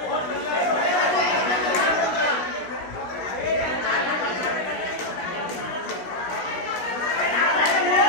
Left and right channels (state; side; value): late; right; 16 ms